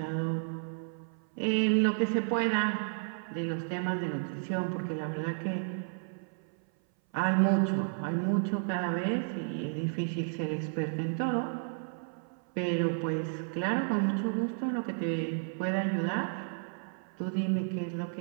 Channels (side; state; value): left; silent; 56 dB below the other